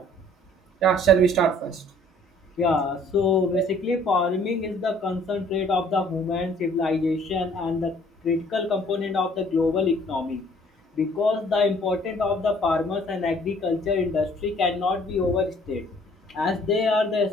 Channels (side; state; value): both; normal; correlation 0.57